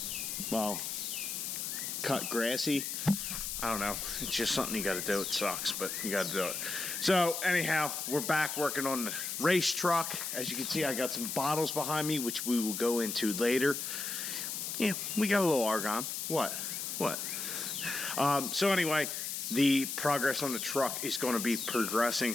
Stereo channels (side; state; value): left; noise; hiss, 4 dB below the sound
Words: well, cut grassy. I don't know. It's just something you got to do. It sucks, but you got to do it. So anyhow, we're back working on the race truck. As you can see, I got some bottles behind me, which we will go into later. Yeah, we got a little argon. What? So anyway, the progress on the truck is going to be